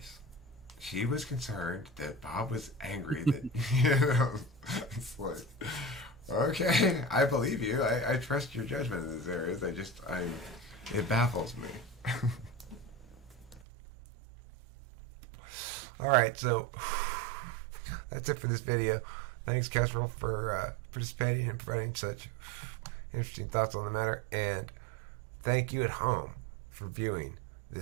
She was concerned that Bob was angry that, it's like, okay, I believe you. I trust your judgment in this area. It baffles me. All right, so that's it for this video. Thanks, Kestrel, for participating and providing such interesting thoughts on the matter. And thank you at home for viewing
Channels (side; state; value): left; drops out; at 13.6 s